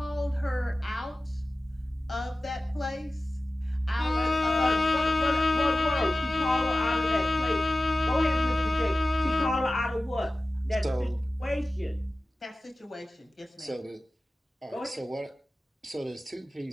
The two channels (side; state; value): both; normal; correlation 0.96